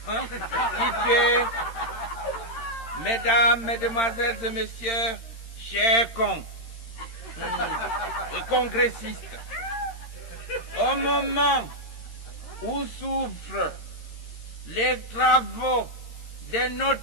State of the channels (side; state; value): right; late; 13 ms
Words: constitués, Mesdames, Mesdemoiselles et Messieurs, chers cons et congressistes, au moment où s'ouvrent les travaux de